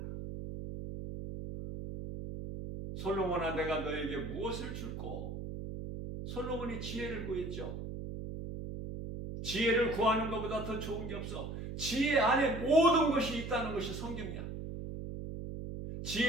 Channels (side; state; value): right; noise; hum, 7 dB below the sound